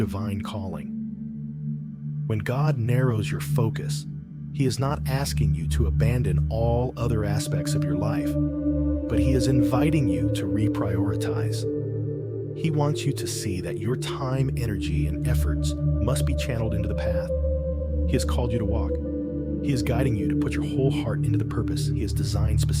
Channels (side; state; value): both; identical; correlation 1.00